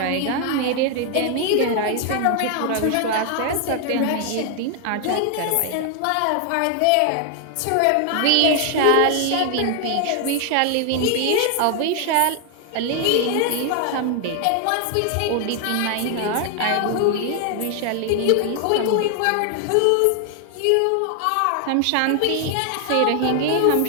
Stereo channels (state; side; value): different; both; correlation 0.00